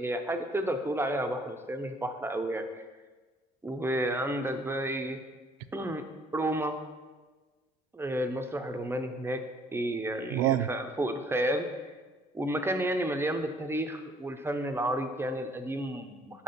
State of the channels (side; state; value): both; normal; correlation 0.61